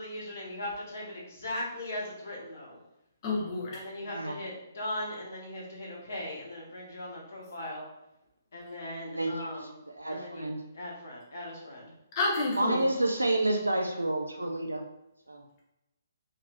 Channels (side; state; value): both; inverted; correlation -0.78